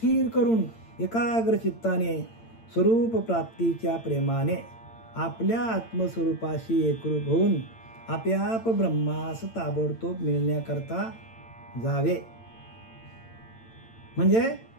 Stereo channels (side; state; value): right; late; 8.8 ms